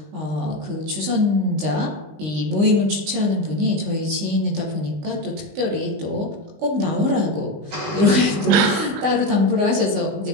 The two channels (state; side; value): late; left; 19 ms